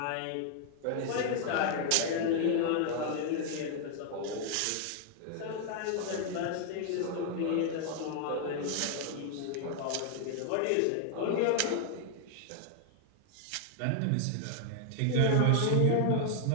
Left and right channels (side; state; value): both; different; correlation 0.00